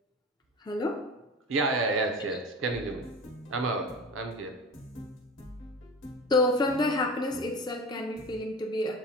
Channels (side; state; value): both; normal; correlation 0.33